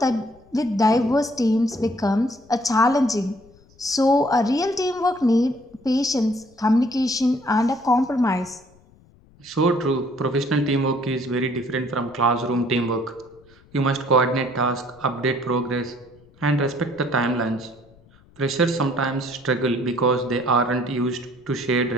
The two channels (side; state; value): left; noise; rumble, 28 dB below the sound